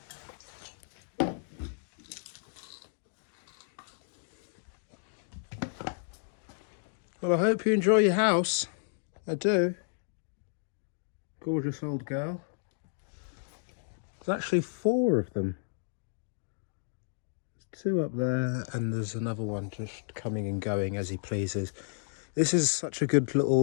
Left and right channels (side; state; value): right; silent; digital silence